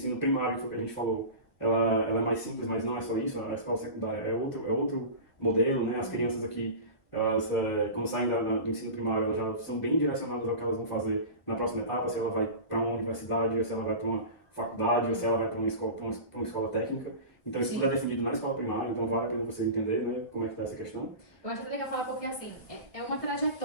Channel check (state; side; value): late; right; 1.3 ms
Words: primário, que foi o que a gente falou, ela é mais simples, mas não é só isso, a escola secundária é outro modelo, né? As crianças aqui, elas, quando saem do ensino primário, elas já são bem direcionadas ao que elas vão fazer na próxima etapa, se ela vai para uma universidade, ou se ela vai para uma faculdade, ou se ela vai para uma escola técnica. Então isso tudo é definido na escola primária, então vale a pena você entender, né, como é que está essa questão. Eu acho legal falar porque, assim, é uma